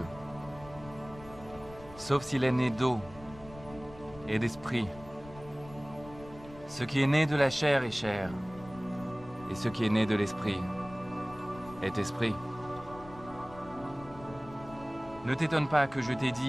sauf s'il est né d'eau et d'esprit. Ce qui est né de la chair est chair, et ce qui est né de l'esprit est esprit. Ne t'étonne pas que je t'ai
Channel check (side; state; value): left; noise; rumble, 18 dB below the sound